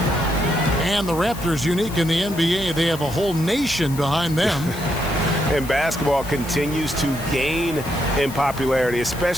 And the Raptors, unique in the NBA, they have a whole nation behind them. And basketball continues to gain in popularity,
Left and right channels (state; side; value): noise; left; hiss, 15 dB below the sound